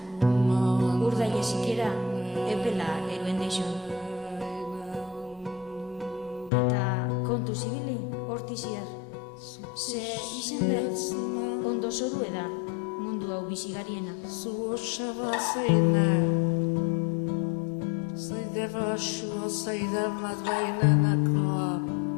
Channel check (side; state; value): right; drops out; at 6.5 s